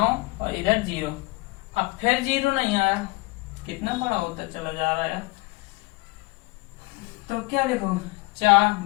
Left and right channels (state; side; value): quieter; right; 23.0 dB